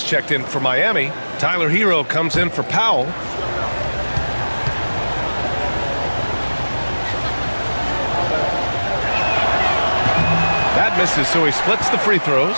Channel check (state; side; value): inverted; both; correlation -1.00